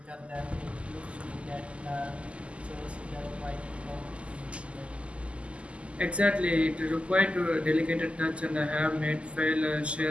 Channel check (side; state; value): left; late; 0.057 ms